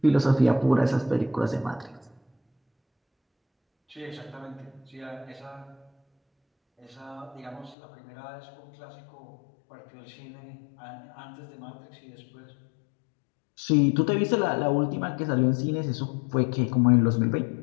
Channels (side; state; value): right; drops out; at 7.8 s